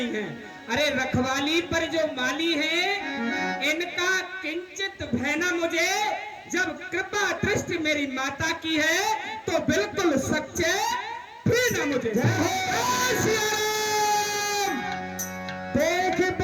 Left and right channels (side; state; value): both; identical; correlation 1.00